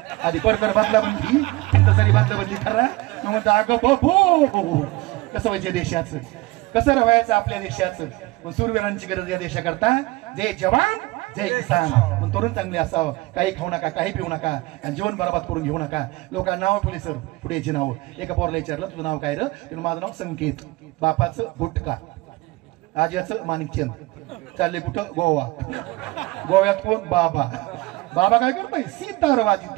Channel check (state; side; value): quieter; left; 21.2 dB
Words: आधी परकर बदला म्हणली तरी बदला बदली करा. मग म्हणतो अगं बो कसं व्हायचं देशाचं, कसं राहायचं आपल्या देशाचं. पण सूरवीरांची गरज या देशाकरता. जय जवान जय किसान. तरुण चांगले असावं, काही खाऊ नका, काही पिऊ नका आणि जीवन बरबाद करून घेऊ नका. लोकांना नाव ठेवले सर पुढेची नाव. एका पोरला विचारलं तुझं नाव काय रे, माझं नाव संकेत, बापाचं गुटका, आज्याचं माणिकचंद. चालले कुठं, गोवा. गोव्यात कोण, बाबा. बाबा काय करतोय, सितार